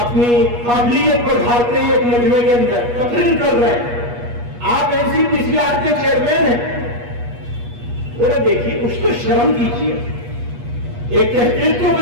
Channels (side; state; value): left; late; 8.3 ms